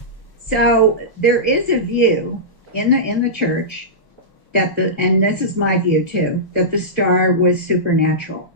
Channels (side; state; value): right; late; 1.1 ms